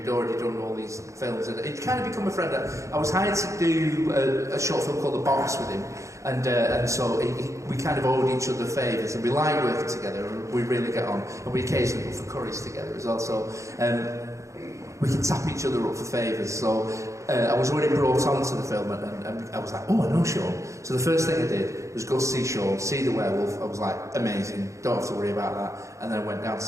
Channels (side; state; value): left; late; 0.15 ms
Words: already done all these films, and it kind of become a friend. I was hired to do a short film called The Box with him, and so we kind of owed each other favours, and we like working together, and we really get on, and we occasionally go for curries together as well. So we can tap each other up for favours. So I was already brought onto the film, and I was like, oh, I know Sean. So the first thing I did was go see Sean, see the werewolf. I was like, amazing, don't have to worry about that. And then I went down to